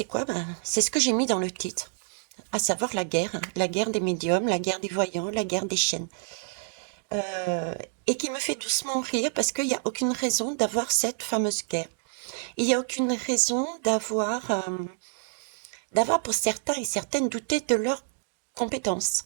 quoi? C'est ce que j'ai mis dans le titre, à savoir la guerre des médiums, la guerre des voyants, la guerre des chaînes. Euh, et qui me fait doucement rire parce qu'il n'y a aucune raison d'avoir cette fameuse guerre. Il n'y a aucune raison d'avoir pour certains et certaines douté de leurs compétences,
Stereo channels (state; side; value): silent; left; digital silence